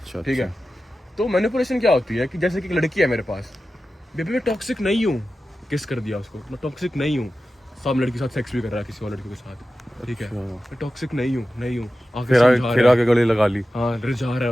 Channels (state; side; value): normal; both; correlation 0.93